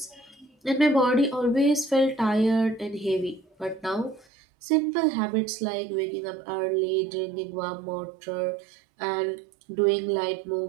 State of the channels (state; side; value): drops out; left; at 4.2 s